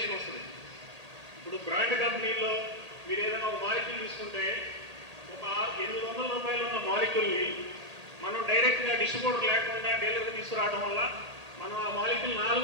వస్తుంది. ఇప్పుడు బ్రాండ్ కంపెనీల్లో మీరు ఏదైనా ఒక మాలిక్యూల్ తీసుకుంటే ఒక 800 రూపాయలు ఉన్న మాలిక్యూల్ని మనం డైరెక్ట్గా డిస్ట్రిబ్యూటర్ లేకుండా డీలర్గా తీసుకురావడం వల్ల మనం ఆ మాలిక్యూల్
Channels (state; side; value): late; left; 1.8 ms